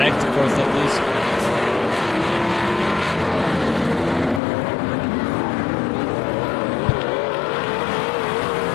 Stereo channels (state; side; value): drops out; right; at 4.4 s